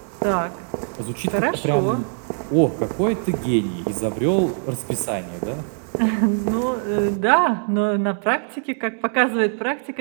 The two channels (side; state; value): left; silent; 59 dB below the other